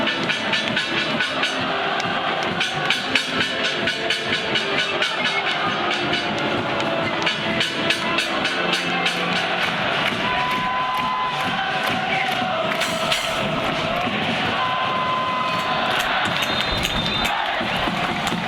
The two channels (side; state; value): both; identical; correlation 1.00